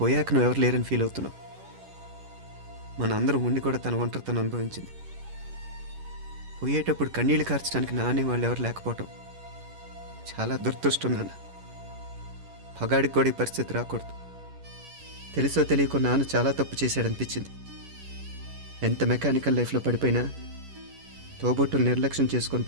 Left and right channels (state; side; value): late; left; 11 ms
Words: నువ్వు ఎవరు లేరని ఫీల్ అవుతున్నావు. మన అందరం ఉండి కూడా తన ఒంటరితను అనుభవించింది. పోయేటప్పుడు కన్నీళ్ళు కార్చడానికి నానే వాళ్ళు ఎవరు లేకపోవటం చాలా దురదృష్టం నాన్న. పగాడికి కూడా ఈ పరిస్థితి రాకూడదు. తెలుసో తెలియకో నాన్న చాలా తప్పు చేశాడనిపించింది. ఎంత మెకానికల్ లైఫ్లో పడిపోయినా తోబొట్టులు నిర్లక్ష్యం చేసుకొని